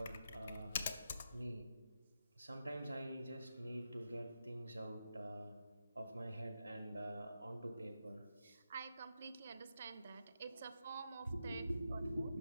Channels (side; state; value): both; inverted; correlation -0.87